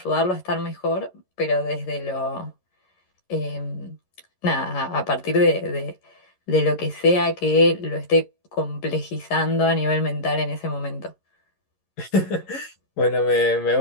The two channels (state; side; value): late; right; 11 ms